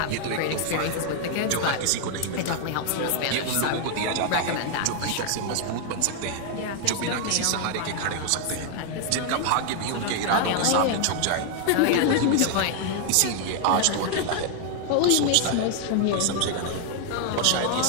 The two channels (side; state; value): both; different; correlation 0.00